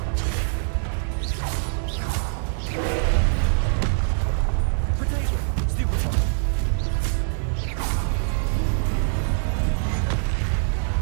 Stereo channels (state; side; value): silent; left; digital silence